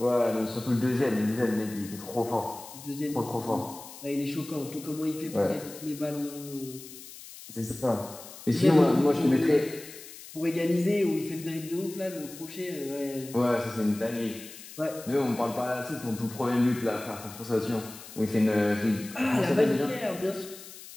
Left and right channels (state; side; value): noise; left; hiss, 15 dB below the sound